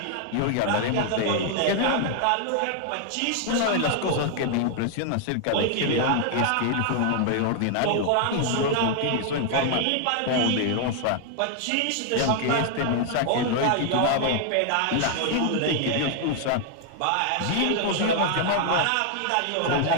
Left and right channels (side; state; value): both; different; correlation 0.00